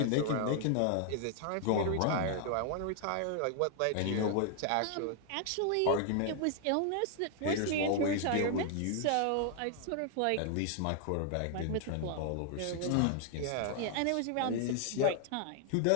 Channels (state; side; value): different; both; correlation 0.00